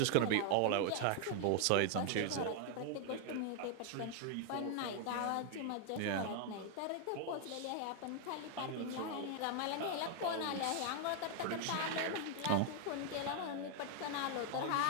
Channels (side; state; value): both; different; correlation 0.00